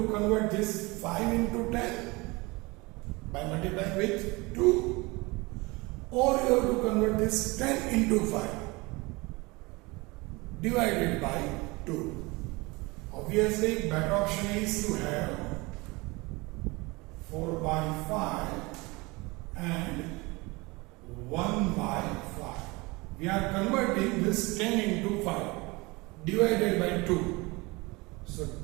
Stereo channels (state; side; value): quieter; left; 24.5 dB